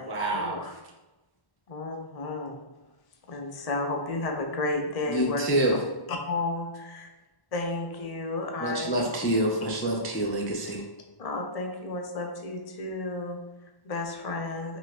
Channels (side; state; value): right; late; 1.1 ms